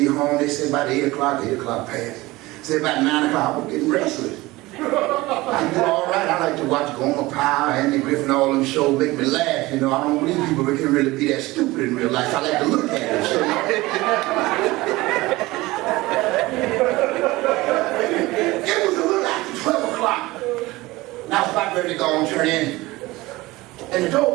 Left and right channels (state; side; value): quieter; left; 20.0 dB